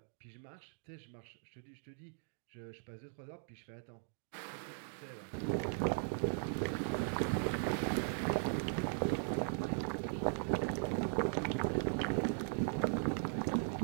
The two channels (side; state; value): left; silent; digital silence